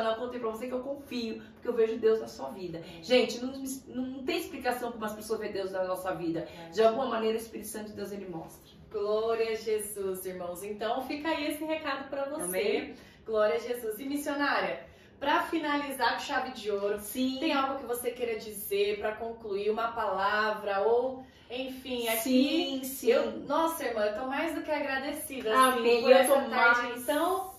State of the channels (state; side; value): identical; both; correlation 1.00